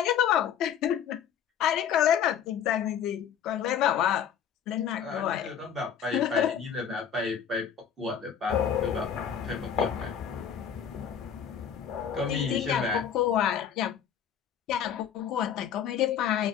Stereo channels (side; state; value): right; quieter; 8.4 dB